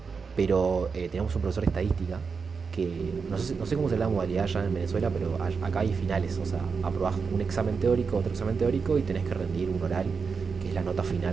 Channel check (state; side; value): quieter; left; 5.3 dB